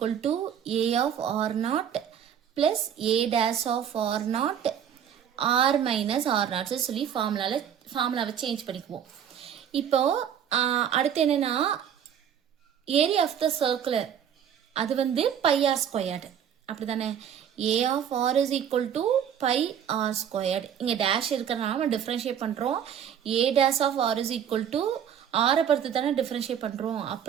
to a of r naught plus a dash of r naught r minus r naught சொல்லி ஃபார்முலாவை change பண்ணிக்குவோம். இப்போ அடுத்து என்னன்னா ஏரியா ஆஃப் த சர்க்குலர் அது வந்து பை ஆர் ஸ்கொயர்டு, அப்படி தானே. A of R is equal to pi R squared. இங்கே டேஷ் இருக்கிறதுனால நம்ம டிஃப்ரென்ஷியேட் பண்ணுறோம். A dash of R is equal to ஆரை பொறுத்து தானே டிஃப்ரென்ஷியேட் பண்ணுறோம்.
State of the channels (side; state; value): left; quieter; 8.9 dB